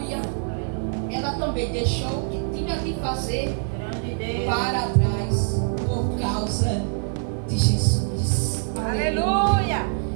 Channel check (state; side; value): silent; left; digital silence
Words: Ela também deixou o que tinha de fazer para trás por causa de Jesus. Aleluia.